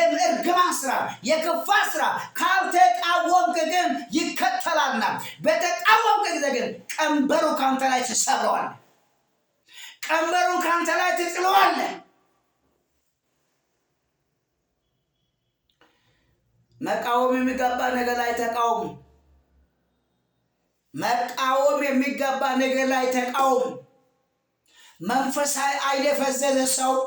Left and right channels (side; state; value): both; identical; correlation 1.00